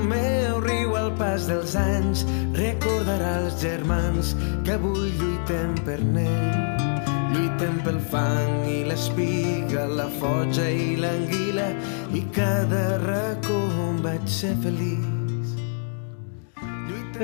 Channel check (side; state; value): right; silent; digital silence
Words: meu riu al pas dels anys recordarà els germans que avui lluitem per n'ell. Lluitem pel fang i l'espiga, la foja i l'anguila, i cada racó on vaig ser feliç.